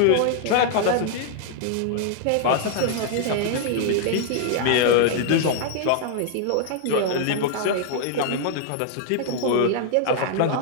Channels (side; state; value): both; different; correlation 0.00